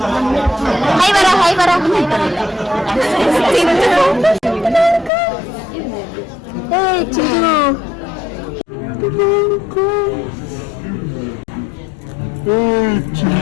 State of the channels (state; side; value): drops out; right; at 5.1 s